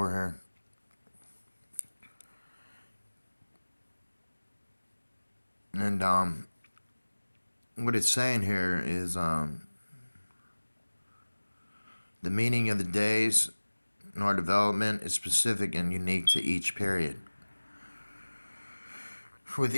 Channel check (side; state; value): both; inverted; correlation -1.00